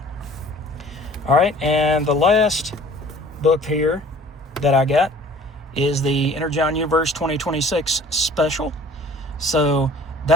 All right, and the last book here that I got is the Energon Universe 2026 special. So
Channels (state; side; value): normal; both; correlation 0.49